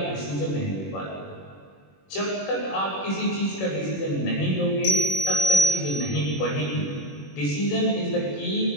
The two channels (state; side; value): late; right; 21 ms